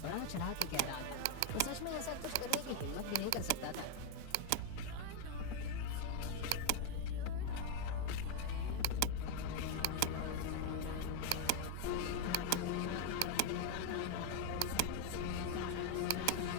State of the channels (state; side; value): different; both; correlation 0.01